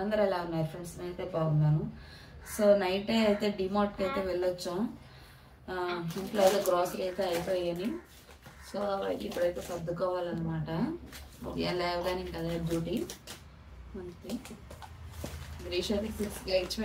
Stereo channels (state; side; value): identical; both; correlation 1.00